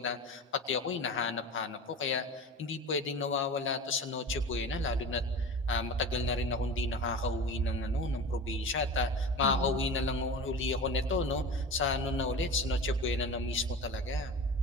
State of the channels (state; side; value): normal; both; correlation 0.32